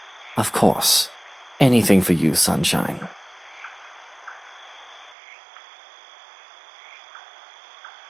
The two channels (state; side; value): drops out; left; at 5.2 s